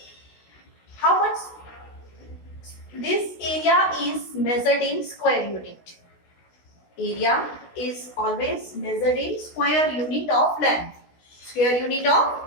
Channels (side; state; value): right; late; 16 ms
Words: how much this area is measured in square unit. Area is always measured in square unit of length. Square unit of